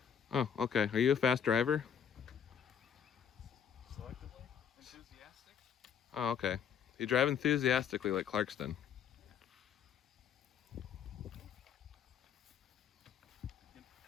Oh, okay. Are you a fast driver? Selectively enthusiastic. Oh, okay. You drive enthusiastically like Clarkston.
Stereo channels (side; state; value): right; quieter; 8.1 dB